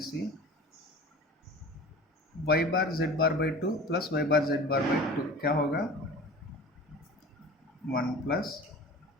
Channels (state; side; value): normal; both; correlation 0.39